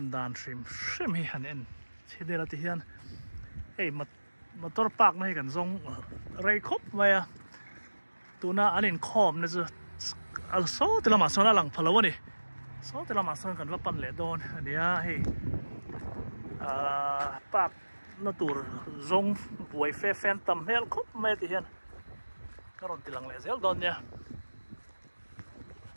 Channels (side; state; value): both; inverted; correlation -1.00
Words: đàn stream hi hẳn en chỉ để là thì hiện hey motor park này cần dùng ray khop vậy tu na anh in khom này chứ số thì là mà số là lằng phalo này số thì là mà số cần vào pan lệ đòn anh ấy hey park nó tụt dùng buổi phê phen tầm hel khop mấy thì hiện cái rồi thì lằng lệ dễ đòn nha